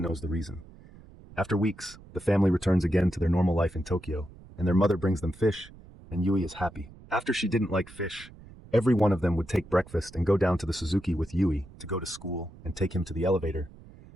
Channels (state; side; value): noise; right; rumble, 20 dB below the sound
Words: knows the reason. After weeks, the family returns again to their normal life in Tokyo, and their mother brings them fish, and Yui is happy. After she didn't like fish, every one of them would take breakfast and go down to the Suzuki with Yui to go to school and take him to the elevator.